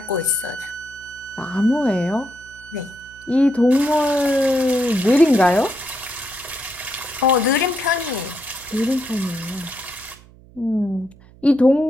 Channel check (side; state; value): right; noise; hum, 24 dB below the sound